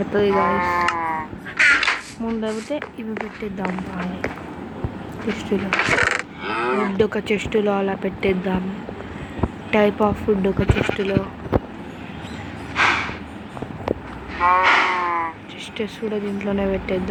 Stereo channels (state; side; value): identical; both; correlation 1.00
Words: గాయస్. ముందైతే ఇవి పెట్టేద్దాం. బాగా చెస్టులో ఫుడ్ ఒక చెస్టులో అలా పెట్టేద్దాం. టైప్ ఆఫ్ ఫుడ్ ఒక చెస్టులో. చెస్టెస్ కూడా దీంట్లోనే